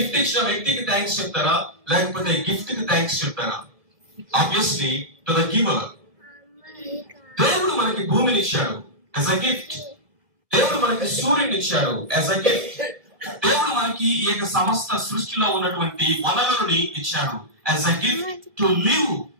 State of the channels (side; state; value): left; late; 1.6 ms